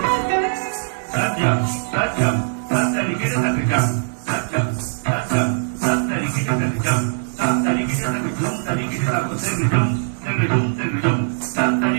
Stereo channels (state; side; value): silent; left; digital silence